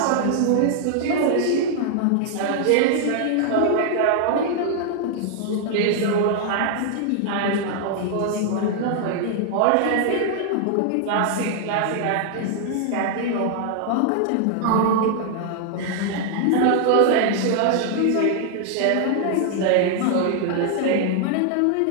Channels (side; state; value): both; different; correlation 0.00